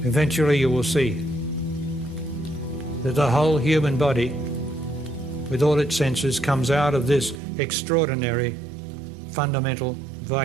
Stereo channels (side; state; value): left; drops out; at 7.4 s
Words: Eventually you will see that the whole human body, with all its senses, comes out of this extraordinary fundamental